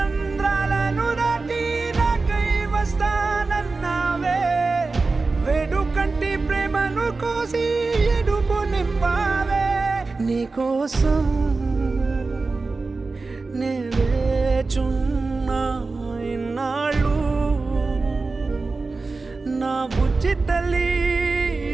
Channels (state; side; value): quieter; left; 3.8 dB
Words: దాటి నాకై వస్తానన్నావే వేడుకంటి ప్రేమను కోసి ఎడుపు నింపావే నీకోసం నే వేచున్నా ఇన్నాళ్ళు నా బుజ్జి తల్లి